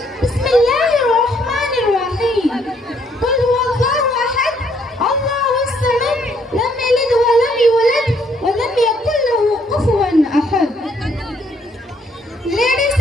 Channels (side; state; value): both; normal; correlation 0.68